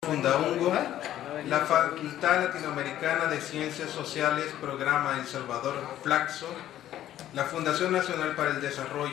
Fundaungo, la Facultad Latinoamericana de Ciencias Sociales, Programa El Salvador, Flaxo, la Fundación Nacional para el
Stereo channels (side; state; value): right; quieter; 12.4 dB